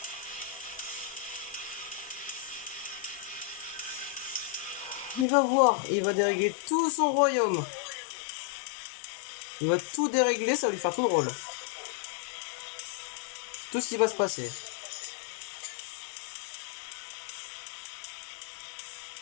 Il va voir, il va dérégler tout son royaume. Il va tout dérégler, ça va lui faire tout drôle. Tout ce qui va se passer.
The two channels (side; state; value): right; drops out; at 5.2 s